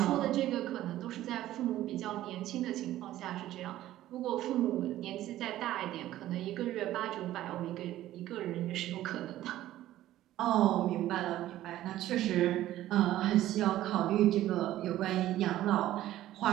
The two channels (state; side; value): quieter; left; 14.1 dB